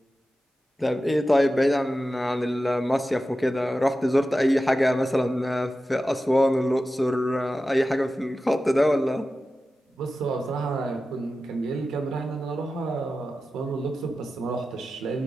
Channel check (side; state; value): both; normal; correlation 0.93